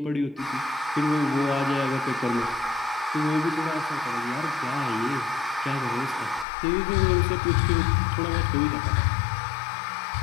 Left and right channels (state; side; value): drops out; right; at 6.5 s